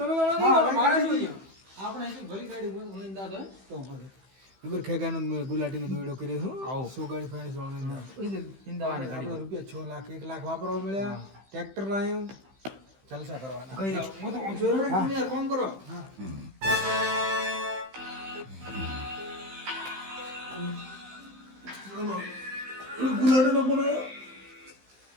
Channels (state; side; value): late; left; 15 ms